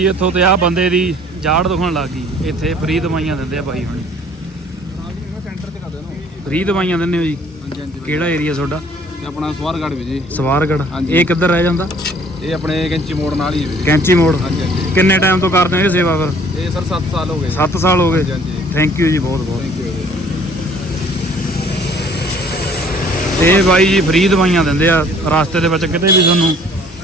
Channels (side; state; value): both; normal; correlation 0.56